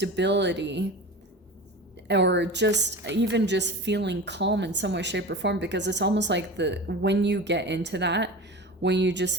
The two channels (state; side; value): normal; both; correlation 0.32